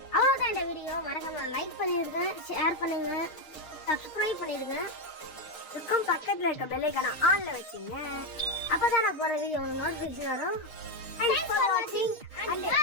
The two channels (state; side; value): late; right; 6.5 ms